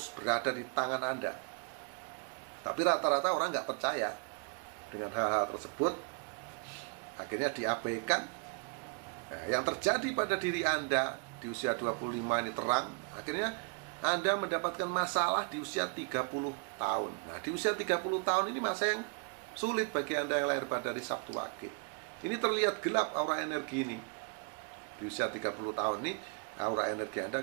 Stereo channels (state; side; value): quieter; left; 34.3 dB